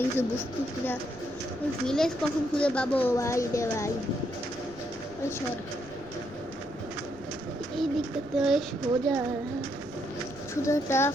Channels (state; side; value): noise; left; rumble, 21 dB below the sound